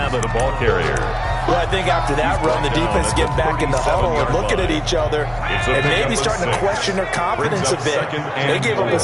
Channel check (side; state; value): both; identical; correlation 1.00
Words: The ball carrier. Well, I think after that run, the defense get back in the huddle and looking at each other and maybe starting to question their confidence a bit. They gave up a